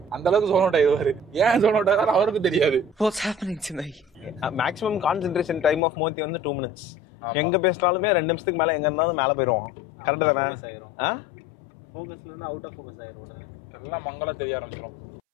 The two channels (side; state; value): right; drops out; at 5.8 s